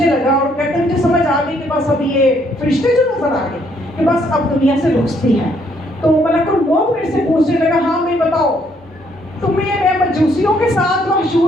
لگا اور کہتے ہیں مجھے سمجھ آ گئی کہ بس اب یہ فرشتے جو نظر آ گئے کہ بس اب دنیا سے رخصتی ہے۔ تو ملک الموت میرے سے پوچھنے لگا ہاں میں بتاؤ تمہیں میں مجوسیوں کے ساتھ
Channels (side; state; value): both; normal; correlation 0.69